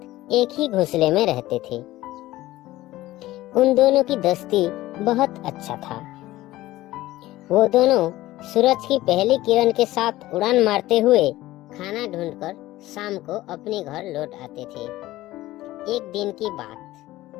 एक ही घोंसले में रहते थे। उन दोनों की दोस्ती बहुत अच्छा था। वो दोनों सूरज की पहली किरण के साथ उड़ान मारते हुए खाना ढूंढकर शाम को अपने घर लौट आते थे। एक दिन की बात,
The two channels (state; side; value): quieter; right; 16.6 dB